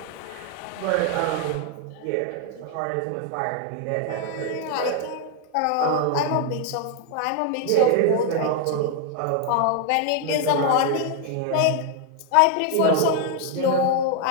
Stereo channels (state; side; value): different; both; correlation 0.00